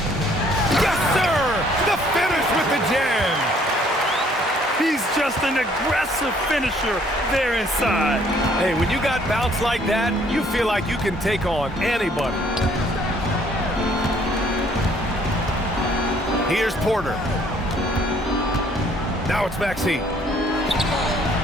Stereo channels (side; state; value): both; normal; correlation 0.62